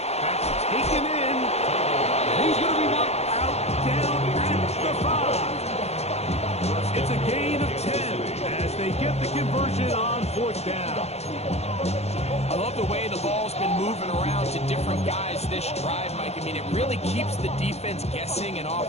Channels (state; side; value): late; right; 0.31 ms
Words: That's taken in. And he's going to be knocked out down at the 5. It's a gain of 10 as they get the conversion on 4th down. I love the way the ball's been moving around to different guys this drive, Mike. I mean, it really keeps the defense guessing and